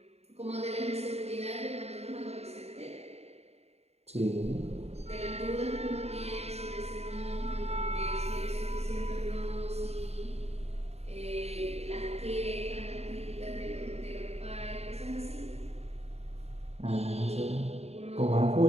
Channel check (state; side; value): late; left; 0.30 ms